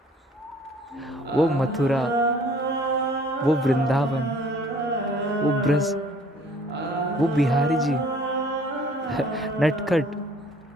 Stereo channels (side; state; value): both; normal; correlation 0.55